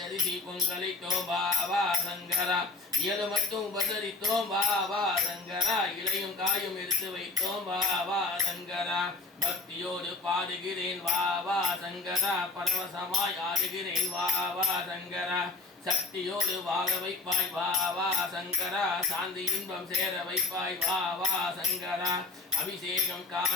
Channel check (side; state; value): right; quieter; 3.4 dB